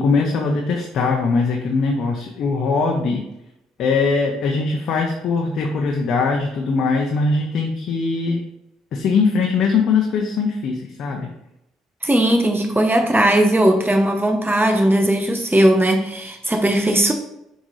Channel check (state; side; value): normal; both; correlation 0.76